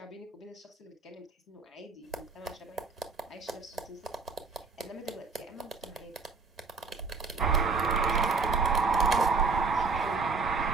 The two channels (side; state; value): left; quieter; 4.2 dB